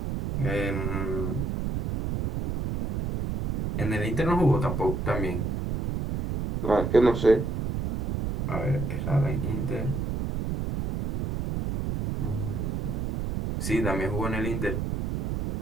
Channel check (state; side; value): noise; right; rumble, 1 dB below the sound